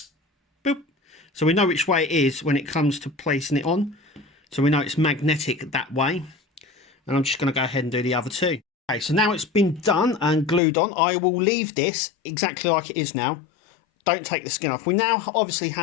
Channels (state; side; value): drops out; right; at 10.6 s